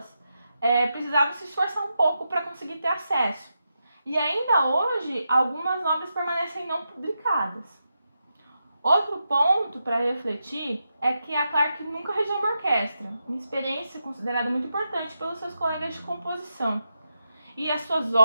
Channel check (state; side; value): inverted; both; correlation -0.87